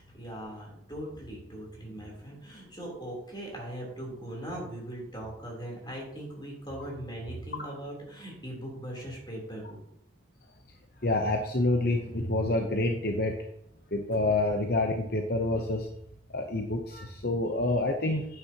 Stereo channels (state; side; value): normal; both; correlation 0.34